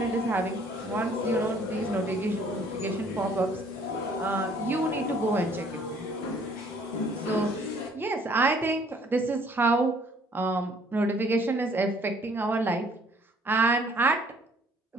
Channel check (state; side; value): normal; both; correlation 0.59